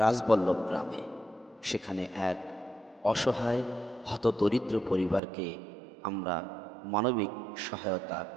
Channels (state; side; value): drops out; left; at 5.2 s